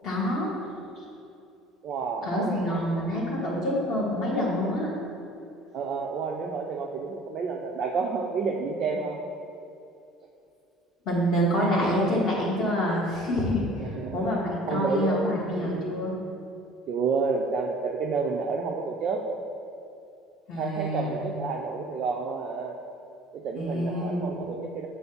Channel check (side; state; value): both; normal; correlation 0.49